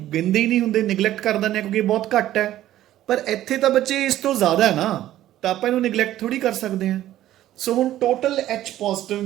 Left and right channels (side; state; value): left; quieter; 13.5 dB